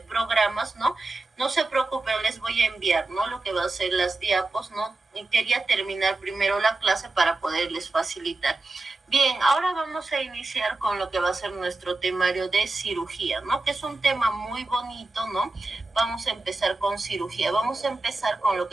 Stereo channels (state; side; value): quieter; left; 3.2 dB